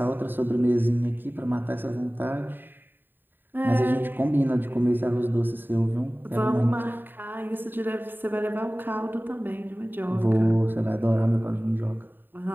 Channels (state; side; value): late; left; 0.093 ms